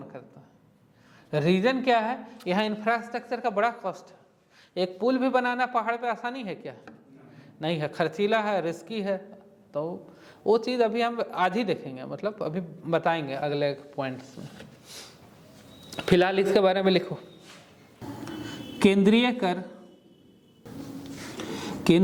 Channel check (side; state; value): both; identical; correlation 1.00